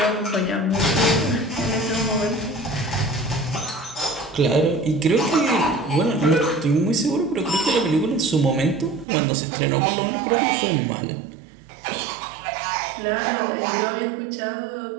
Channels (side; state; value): left; drops out; at 9.1 s